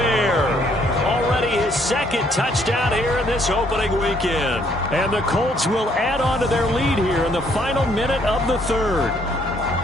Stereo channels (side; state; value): both; normal; correlation 0.67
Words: Already his 2nd touchdown here in this opening weekend. And the Colts will add on to their lead here in the final minute of the 3rd.